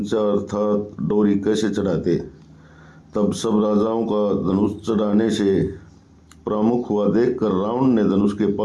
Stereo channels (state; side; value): identical; both; correlation 1.00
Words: अर्थात डोरी कैसे चढ़ाते? तब सब राजाओं का धनुष चढ़ाने से प्रमुख हुआ देखकर रावण ने धनुष के